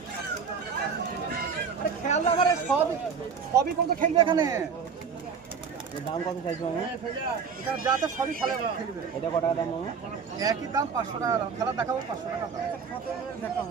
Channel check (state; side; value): quieter; left; 6.1 dB